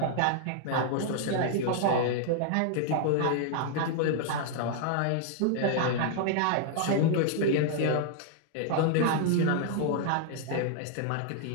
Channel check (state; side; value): different; both; correlation 0.00